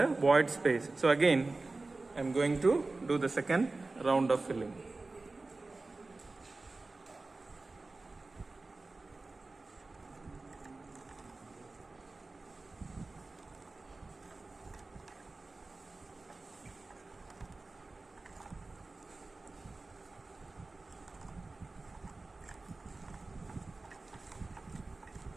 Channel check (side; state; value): left; quieter; 3.4 dB